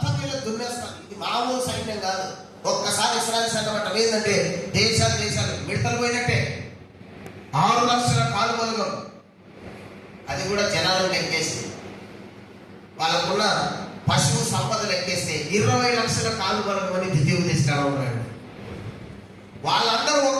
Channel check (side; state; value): both; identical; correlation 1.00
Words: వీళ్ళు దున్నేస్తారు. ఇది మామూలు సైన్యం కాదు. ఒక్కసారి ఇశ్రాయేలు సైన్యం అంటే ఏంటంటే దేశాలు మిడతలు పోయినట్టే. 6 లక్షల కాలువలుగా, అది కూడా జనాలను లెక్కేసి, వాళ్ళకున్న పశువు సంపదలు లెక్కేస్తే 20 లక్షల కాలువలు అని ద్వితీయోపదేశకాండంలో ఉన్నాడు. వాళ్ళందరూ